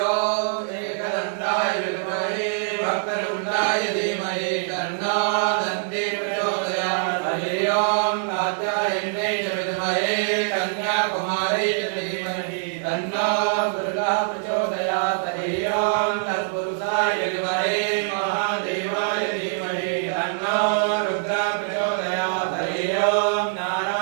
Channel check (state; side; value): silent; left; digital silence